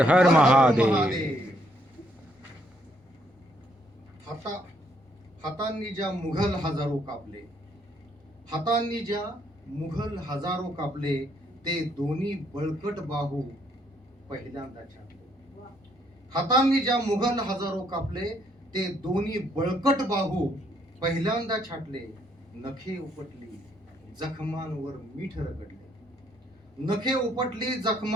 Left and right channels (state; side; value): normal; both; correlation 0.70